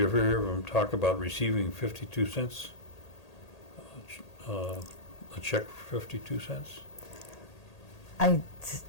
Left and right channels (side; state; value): right; late; 1.8 ms